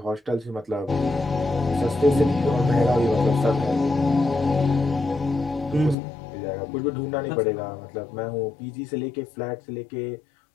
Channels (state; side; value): drops out; right; at 6.0 s